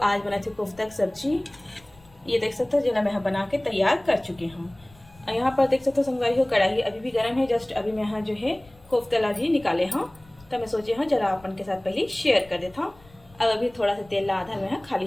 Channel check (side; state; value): left; noise; rumble, 26 dB below the sound